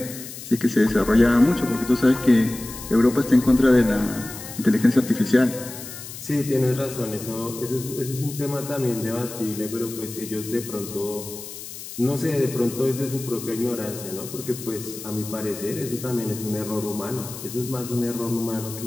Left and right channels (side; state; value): left; noise; hiss, 12 dB below the sound